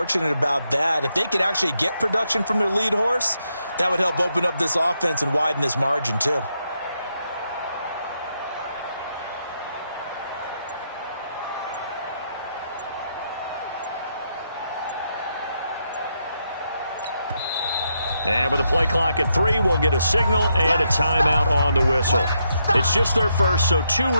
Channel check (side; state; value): both; inverted; correlation -0.80